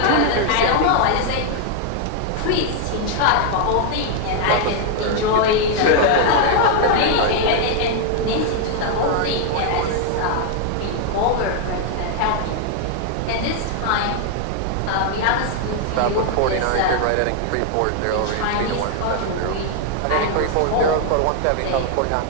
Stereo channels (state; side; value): different; both; correlation 0.00